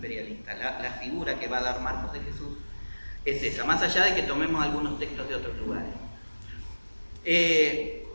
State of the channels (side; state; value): both; inverted; correlation -1.00